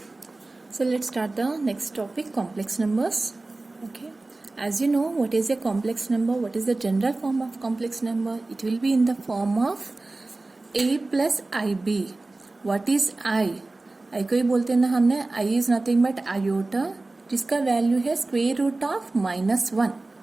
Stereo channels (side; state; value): left; quieter; 3.1 dB